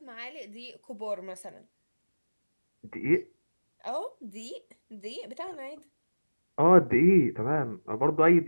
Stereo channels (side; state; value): both; inverted; correlation -1.00